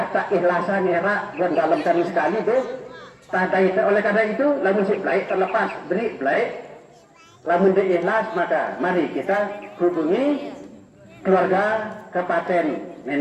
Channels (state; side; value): identical; both; correlation 1.00